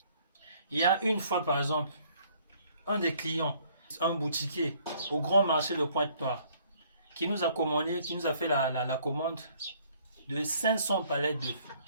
Il y a une fois, par exemple, un des clients, un boutiquier au grand marché de Pointe-Noire, qui nous a commandé, qui nous a fait la commande de 500 palettes d'œufs.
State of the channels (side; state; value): both; inverted; correlation -0.61